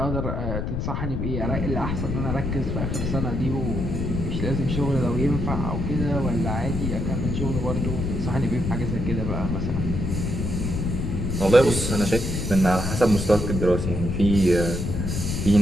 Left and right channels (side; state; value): left; noise; rumble, 2 dB below the sound